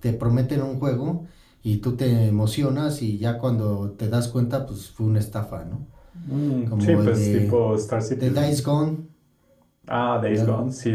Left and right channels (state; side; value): identical; both; correlation 1.00